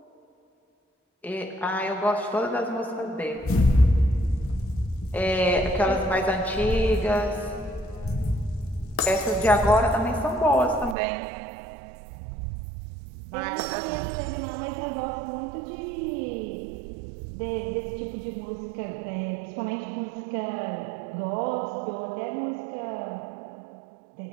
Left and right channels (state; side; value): drops out; left; at 11.0 s